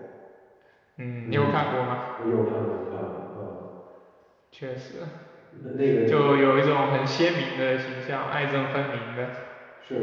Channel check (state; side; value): identical; both; correlation 1.00